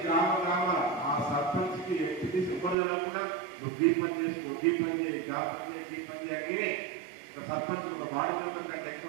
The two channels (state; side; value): drops out; left; at 2.8 s